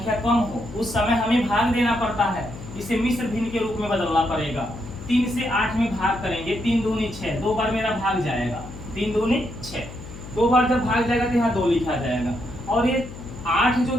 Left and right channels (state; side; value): noise; left; hum, 13 dB below the sound